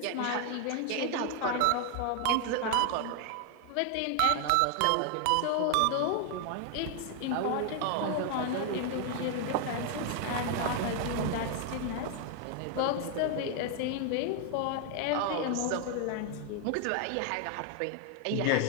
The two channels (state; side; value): different; both; correlation 0.00